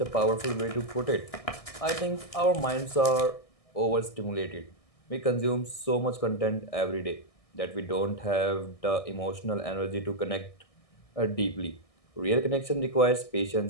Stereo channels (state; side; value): late; right; 1.6 ms